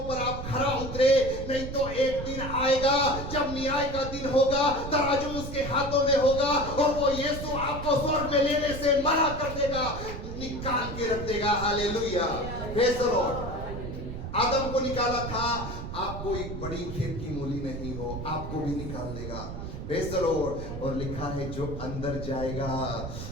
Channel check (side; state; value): right; noise; rumble, 7 dB below the sound